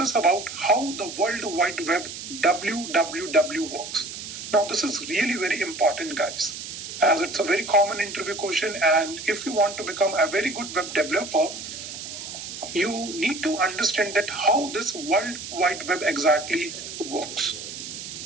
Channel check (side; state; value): right; noise; hiss, 9 dB below the sound